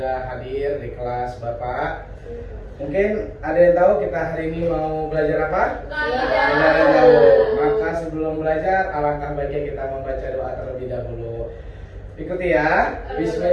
hadir di kelas Bapak. Mungkin ada yang tahu kita hari ini mau belajar apa? Tidak ada yang tahu. Maka sebelum belajar, alangkah baiknya kita membaca doa terlebih dahulu. Ikuti ya.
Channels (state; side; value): identical; both; correlation 1.00